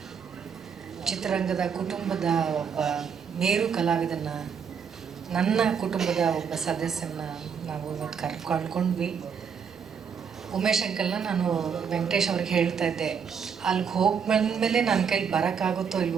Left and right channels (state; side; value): quieter; left; 6.8 dB